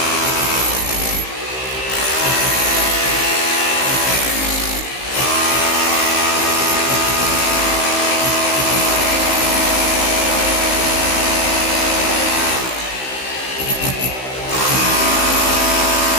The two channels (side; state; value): right; late; 15 ms